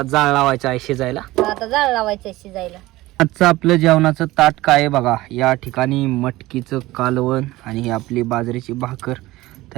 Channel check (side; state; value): left; quieter; 18.2 dB